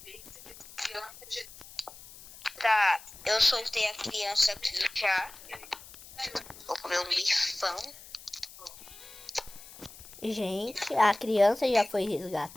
Tá, eu soltei a criança aqui já. Vou comer um bifão. Gente, a criança já foi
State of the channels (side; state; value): left; noise; hiss, 18 dB below the sound